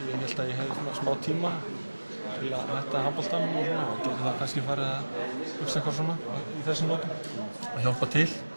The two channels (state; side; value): inverted; both; correlation -1.00